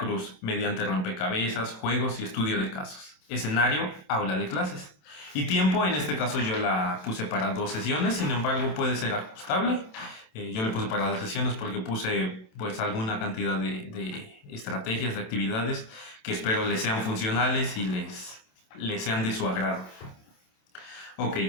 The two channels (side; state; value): right; late; 27 ms